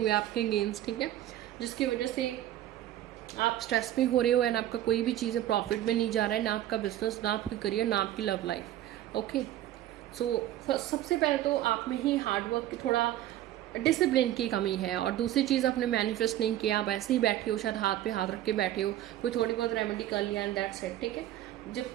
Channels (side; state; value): left; quieter; 13.3 dB